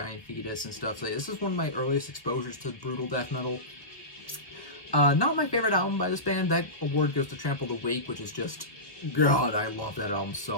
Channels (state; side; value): late; right; 1.3 ms